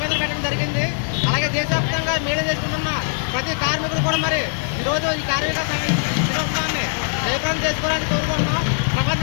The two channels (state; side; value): silent; right; digital silence